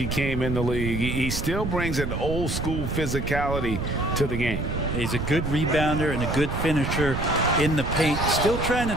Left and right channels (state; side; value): noise; right; rumble, 3 dB below the sound